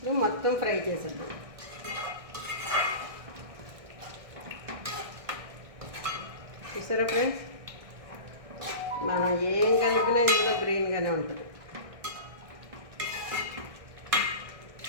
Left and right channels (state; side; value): late; left; 1.6 ms